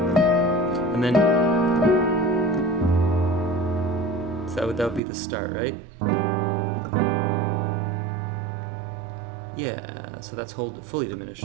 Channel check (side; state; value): left; drops out; at 5.0 s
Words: And then so that would be the start, right? Yeah, so that's fully diminished.